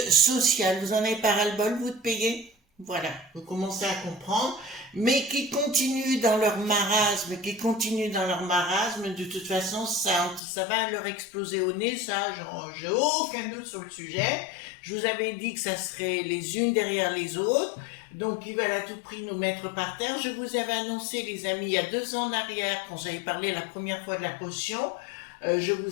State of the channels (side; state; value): right; drops out; at 10.4 s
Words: sociales. Vous en avez pas ras-le-bol, vous, de payer? Voilà, vous commencez à comprendre, mais qui continuent dans leur marasme, de toute façon, ça va leur exploser au nez, ça, j'ai aucun doute sur le sujet. Je vous avais dit que ça serait les unes derrière les autres, donc ils veulent à tout prix nous mettre par terre. Je vous avais annoncé, les amis, il y a 2 ans en arrière, quand j'avais parlé la première fois de la potion, je